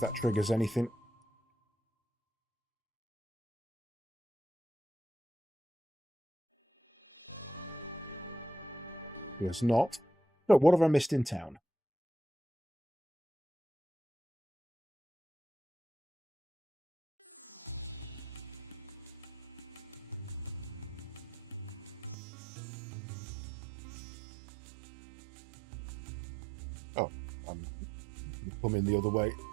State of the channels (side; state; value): left; drops out; at 22.2 s